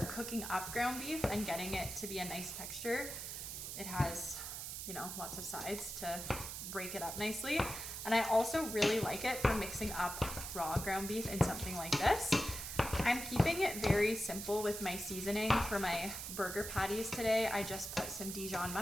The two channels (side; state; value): right; noise; hiss, 6 dB below the sound